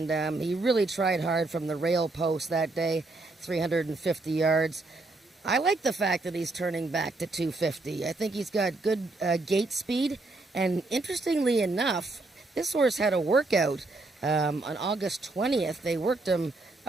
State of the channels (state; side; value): quieter; left; 3.2 dB